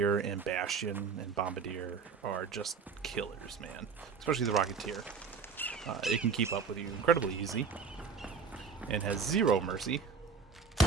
and Bastion and Bombardier are just killers, man. Especially the Rocketeer. It can keep up with you incredibly easy. And has zero mercy.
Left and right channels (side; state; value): left; quieter; 5.5 dB